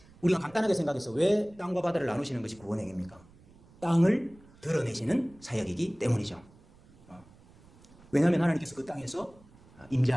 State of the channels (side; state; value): right; noise; rumble, 26 dB below the sound